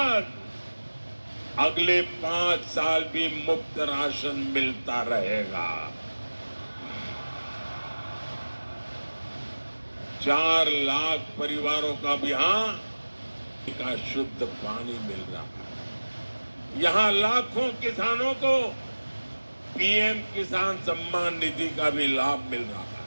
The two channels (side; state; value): both; inverted; correlation -1.00